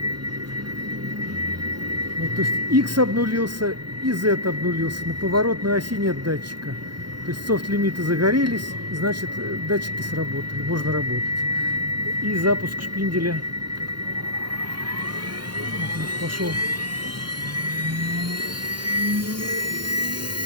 Вот, то есть X обнулился и Z обнулился. На поворотной оси нет датчика. То есть софт-лимиты загорелись, значит датчики сработали, можно работать. И запуск шпинделя. Вот, пошел.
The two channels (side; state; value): left; late; 0.71 ms